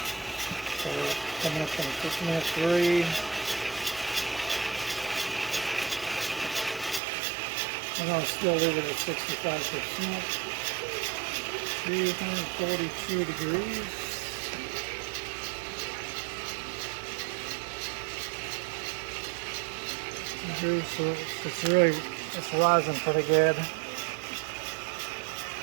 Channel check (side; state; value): left; drops out; at 7.0 s